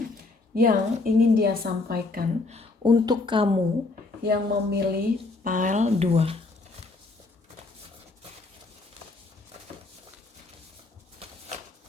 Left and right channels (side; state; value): right; quieter; 3.5 dB